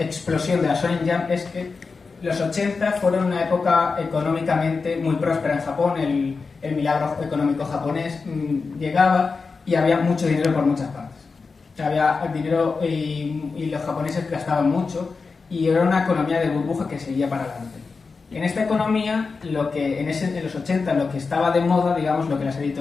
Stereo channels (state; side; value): quieter; right; 4.6 dB